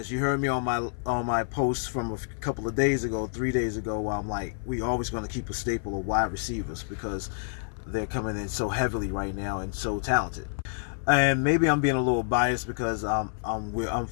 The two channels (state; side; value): silent; right; 57 dB below the other